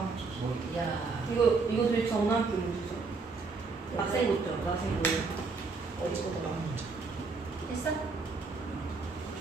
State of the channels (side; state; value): left; quieter; 4.3 dB